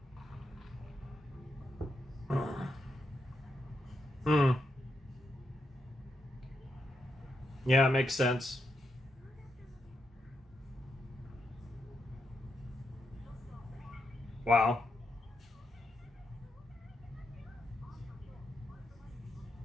Hmm. Yeah, it makes sense. Wow.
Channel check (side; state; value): both; normal; correlation 0.84